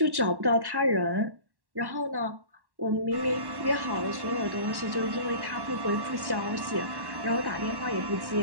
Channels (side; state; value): left; late; 1.1 ms